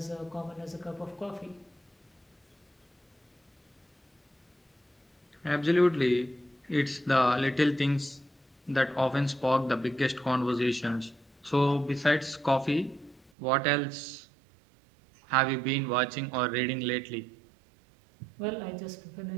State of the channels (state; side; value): drops out; left; at 13.3 s